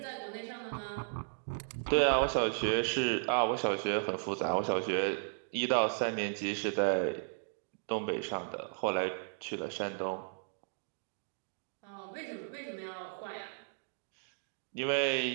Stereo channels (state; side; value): silent; left; digital silence